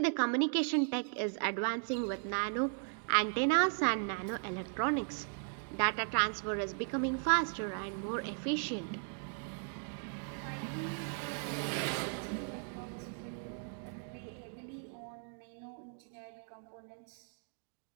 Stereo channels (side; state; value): left; silent; 53 dB below the other